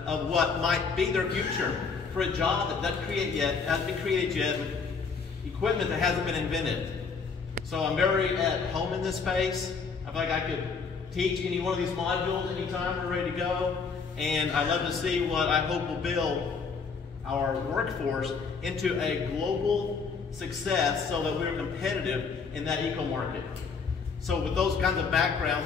of what might be their future for a job that doesn't hasn't been created yet with equipment that hasn't been invented. So I'm very at home in this space. I feel like I could teach any one of these modules anytime we're ready to go. And I love to see what I hope will build our workforce into a global success so that we're competitive in that eco market. So with those kinds of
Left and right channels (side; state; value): right; quieter; 5.2 dB